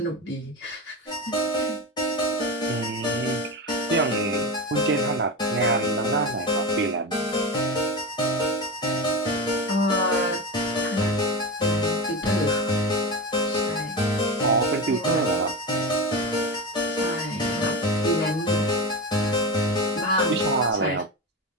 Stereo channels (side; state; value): both; normal; correlation 0.22